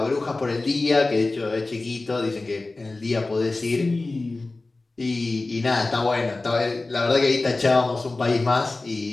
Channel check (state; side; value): quieter; right; 3.3 dB